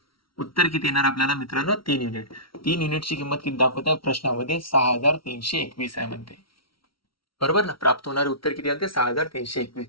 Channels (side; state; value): right; late; 0.74 ms